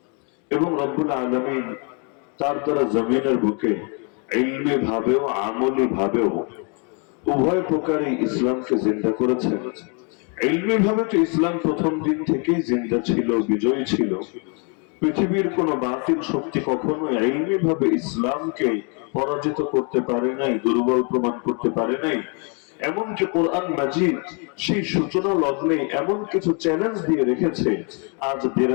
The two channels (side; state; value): right; quieter; 36.5 dB